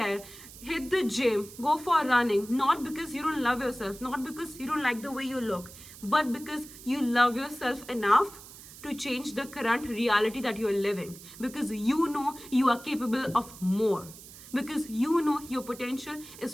hit the gym, go for running, not because you don't love yourself, not because you don't like the way you look, but because you love yourself enough to change the current reality that you are living, because you know you are capable of more, because you know your potential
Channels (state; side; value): noise; right; hiss, 17 dB below the sound